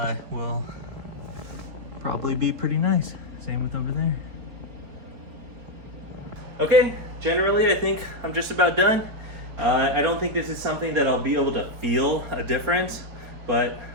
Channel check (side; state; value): left; late; 4.3 ms